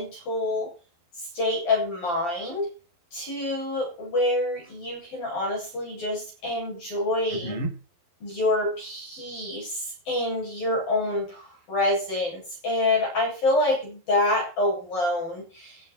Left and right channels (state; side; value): late; right; 12 ms